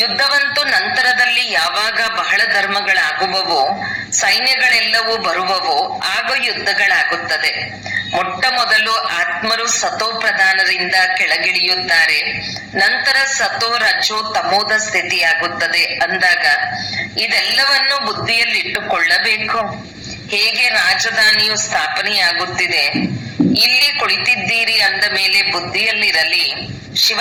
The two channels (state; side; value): identical; both; correlation 1.00